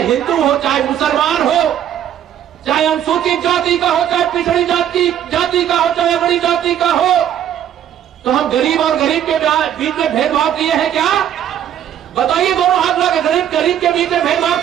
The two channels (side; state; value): left; quieter; 10.3 dB